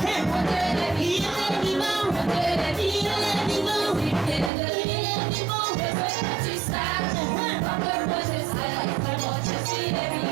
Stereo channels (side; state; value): left; drops out; at 4.5 s